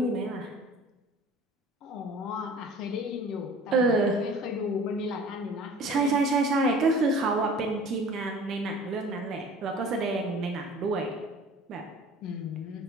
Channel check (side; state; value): both; normal; correlation 0.45